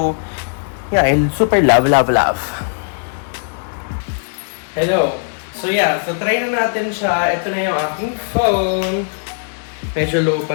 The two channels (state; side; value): silent; right; digital silence